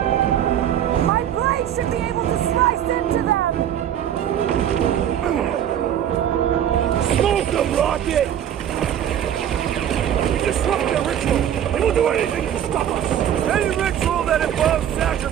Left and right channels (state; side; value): quieter; left; 10.1 dB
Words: My blade should be able to slice into them! Smoke them, Rocket! We disrupt their ritual, and we'll do anything to stop us! Any ritual that involves